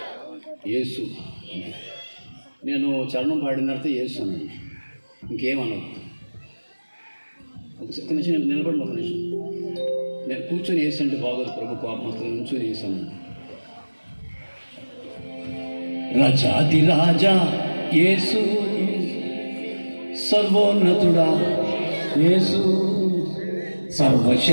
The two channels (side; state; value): both; inverted; correlation -1.00